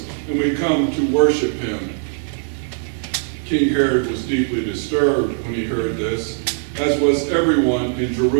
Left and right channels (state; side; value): silent; left; 66 dB below the other